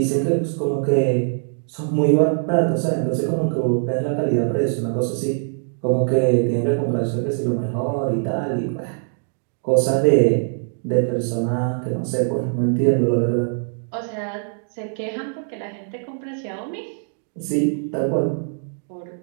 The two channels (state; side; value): silent; left; digital silence